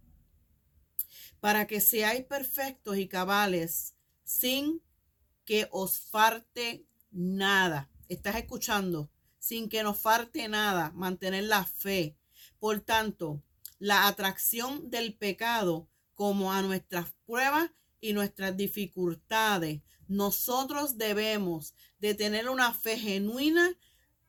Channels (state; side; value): identical; both; correlation 1.00